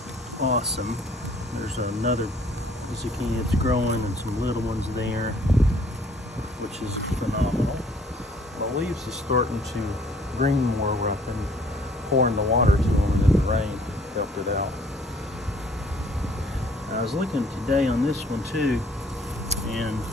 awesome. There's another zucchini that's growing and some little ones there, which is phenomenal. The leaves is starting to green more where I've been pouring the water to them, and then the rain helped it out. I was looking today on this one too, and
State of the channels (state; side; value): normal; both; correlation 0.59